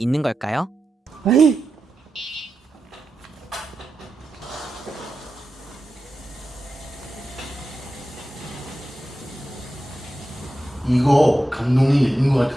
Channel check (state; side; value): normal; both; correlation 0.90